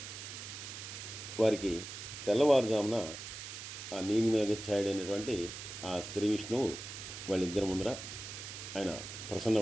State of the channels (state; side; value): noise; right; hiss, 9 dB below the sound